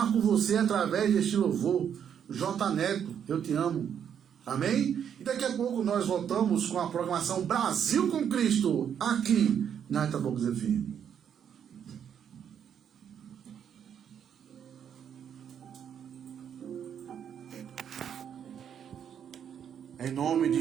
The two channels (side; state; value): left; quieter; 8.5 dB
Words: com você através deste louvor. J. Neto, eu te amo. Amém? E daqui a pouco nós voltamos com a programação Brasil com Cristo, aqui na Itabocas FM. Em nome de